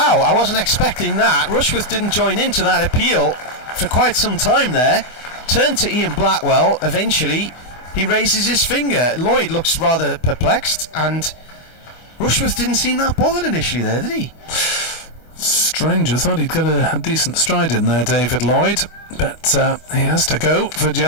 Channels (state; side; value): late; right; 24 ms